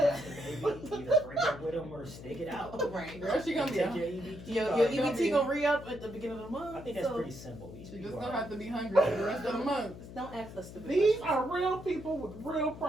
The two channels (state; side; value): noise; left; hum, 14 dB below the sound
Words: to maybe either break up with him or stick it out. Right. Girl, she gonna be Take a, your EBT Your card. EBT gonna re-up at the beginning of the month. I think that's so pretty simple. These she people just are- gonna have to be hungry for the rest of the month. Just don't ask us stupid These questions. are real people with real